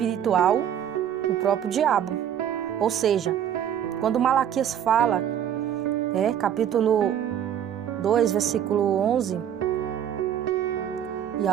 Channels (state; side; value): quieter; left; 9.7 dB